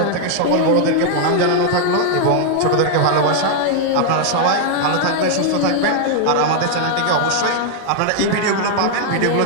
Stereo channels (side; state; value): both; different; correlation 0.00